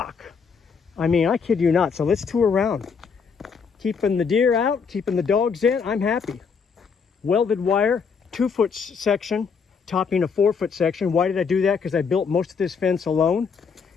I mean, I kid you not. So let's tour around. Keeping the deer out, keeping the dogs in, I'm happy. Welded wire, 2-foot section, topping a 4-foot section. Why did I do that? Because I built most of this fence alone.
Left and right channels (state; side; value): quieter; right; 5.8 dB